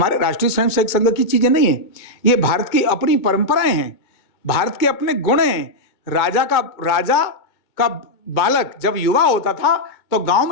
राष्ट्रीय स्वयंसेवक संघ की चीजें नहीं है, ये भारत की अपनी परंपराएं हैं, भारत के अपने गुण हैं। राजा का बालक जब युवा होता था तो गांव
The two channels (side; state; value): right; late; 2.2 ms